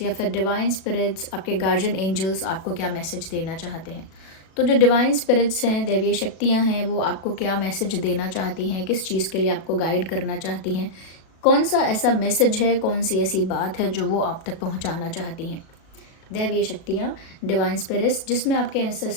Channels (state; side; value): late; right; 37 ms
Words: या फिर डिवाइन स्पिरिट्स, आपके गार्जियन एंजल्स आपको क्या मैसेज देना चाहते हैं। तो जो डिवाइन स्पिरिट्स हैं, दैवीय शक्तियाँ हैं, वो आपको क्या मैसेज देना चाहती हैं, किस चीज़ के लिए आपको गाइड करना चाहती हैं, कौन सा ऐसा मैसेज है, कौन सी ऐसी बात है जो वो आप तक पहुँचाना चाहती हैं। दैवीय शक्तियाँ, डिवाइन स्पिरिट्स, जिसमें आपके